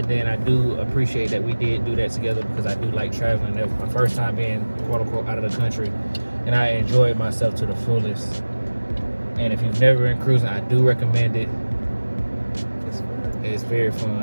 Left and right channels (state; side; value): inverted; both; correlation -1.00